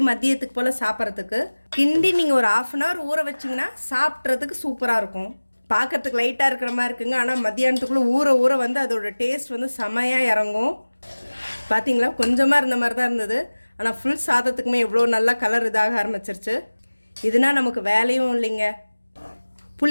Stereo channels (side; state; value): both; inverted; correlation -1.00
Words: மதியத்துக்கு போல் சாப்பிட்றதுக்கு கிண்டி நீங்கள் ஒரு 1/2 அன் ஹவர் ஊற வச்சிங்கன்னா சாப்பிட்றதுக்கு சூப்பராக இருக்கும். பார்க்குறதுக்கு லைட்டாக இருக்கிற மாதிரி இருக்குங்க, ஆனால் மத்தியானத்துக்குள்ளே ஊற ஊற வந்து அதோட டேஸ்ட் வந்து செமையாக இறங்கும். பார்த்தீங்களா, கொஞ்சமாக இருந்த மாதிரி தான் இருந்தது, ஆனால் ஃபுல் சாதத்துக்குமே எவ்வளோ நல்லா கலர் இதாக ஆரம்பிச்சிருச்சு. இதுனா நமக்கு வேலையும் இல்லைங்க.